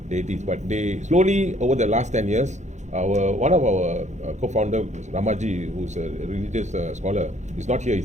deities. But they slowly over the last 10 years, one of our co-founder Ramaji, who's a religious scholar, is not here.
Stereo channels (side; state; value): left; late; 0.34 ms